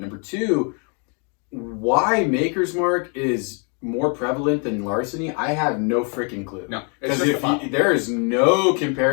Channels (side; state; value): right; quieter; 38.3 dB